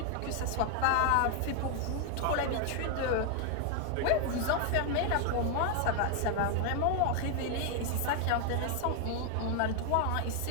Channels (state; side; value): different; both; correlation 0.00